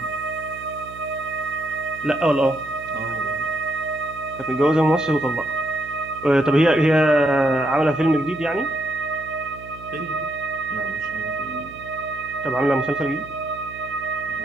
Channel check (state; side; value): noise; right; hum, 17 dB below the sound